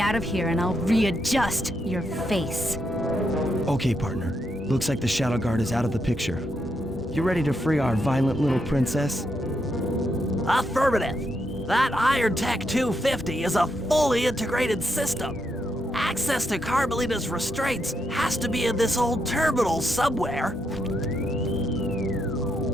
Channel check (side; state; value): both; normal; correlation 0.81